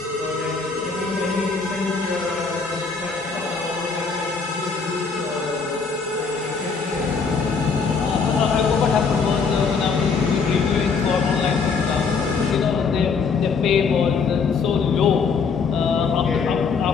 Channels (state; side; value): quieter; right; 5.2 dB